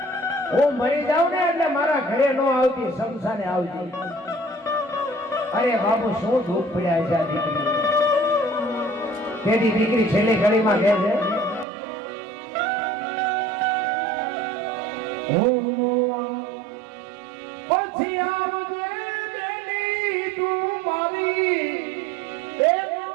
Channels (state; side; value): drops out; left; at 11.7 s